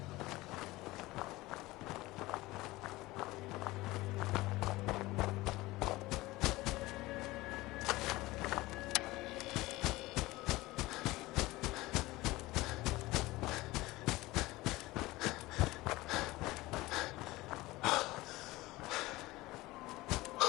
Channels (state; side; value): quieter; right; 19.5 dB